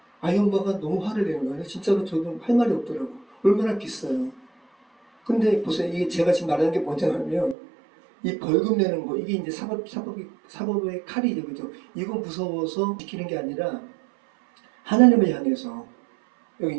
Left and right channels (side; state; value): left; drops out; at 7.6 s